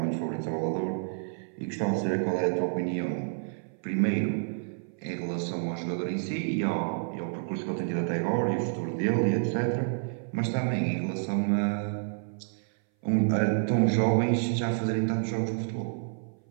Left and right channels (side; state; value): left; silent; 57 dB below the other